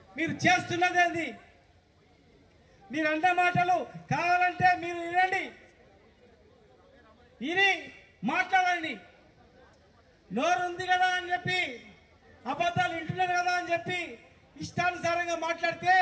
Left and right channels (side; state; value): both; identical; correlation 1.00